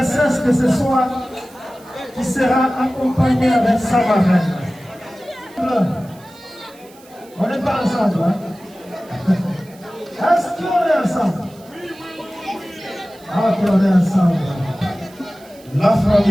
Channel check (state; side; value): noise; right; hiss, 26 dB below the sound